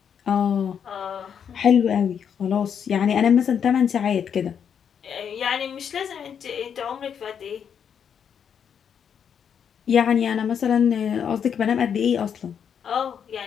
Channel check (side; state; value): right; quieter; 7.8 dB